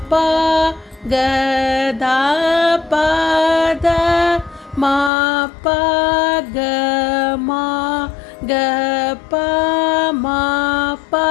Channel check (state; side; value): drops out; right; at 5.1 s